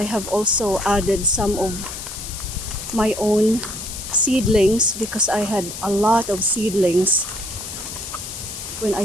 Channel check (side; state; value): left; noise; hiss, 9 dB below the sound